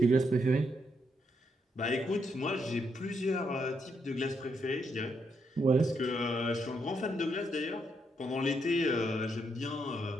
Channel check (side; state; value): both; normal; correlation 0.78